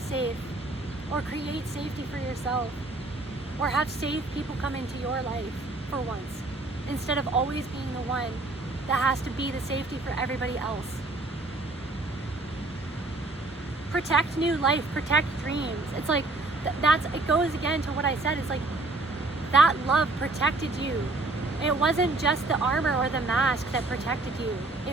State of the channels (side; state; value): left; quieter; 3.1 dB